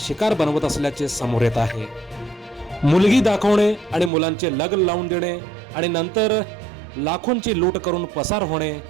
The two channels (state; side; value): drops out; left; at 4.1 s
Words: बनवत असल्याचे समोर येत आहे. मुलगी दाखवणे आणि मुलांचे लग्न लावून देणे आणि नंतर लाखोंची लूट करून पसार होणे